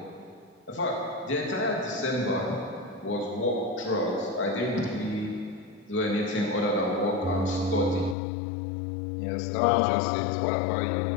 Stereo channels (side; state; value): right; drops out; at 8.2 s